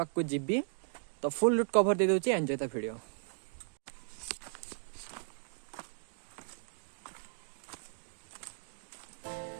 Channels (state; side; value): silent; left; digital silence